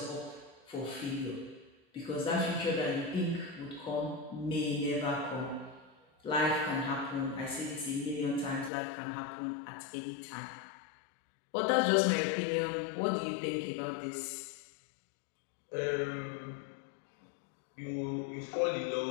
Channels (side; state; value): right; drops out; at 8.7 s